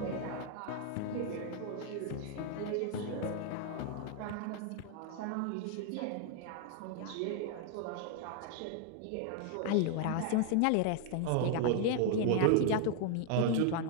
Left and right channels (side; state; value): both; different; correlation 0.00